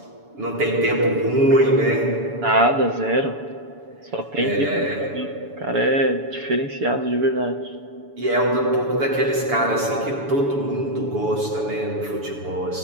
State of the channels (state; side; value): late; left; 7.0 ms